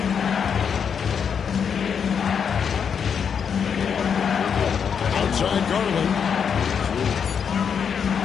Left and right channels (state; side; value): quieter; right; 7.1 dB